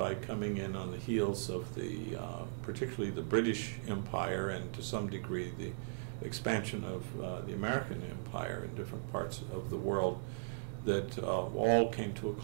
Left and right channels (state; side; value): silent; left; digital silence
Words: coming in on the heels of particularly the British Empire, and to some degree the expansion of the American Empire in different parts of the world, that all came to a